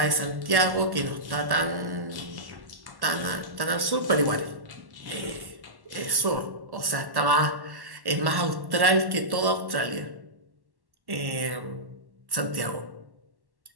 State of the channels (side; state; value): left; late; 1.1 ms